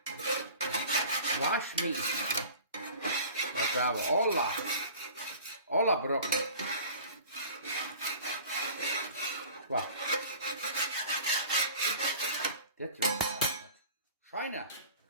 Waschmeat. Dat werden we alle brokken. Wat? Dit is schijnen.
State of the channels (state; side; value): inverted; both; correlation -0.43